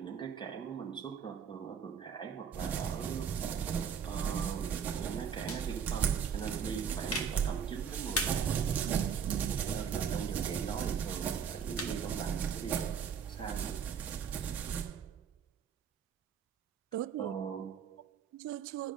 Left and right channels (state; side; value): quieter; left; 7.1 dB